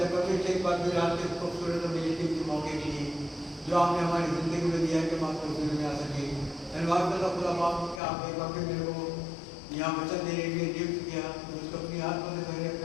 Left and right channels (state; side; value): drops out; right; at 8.0 s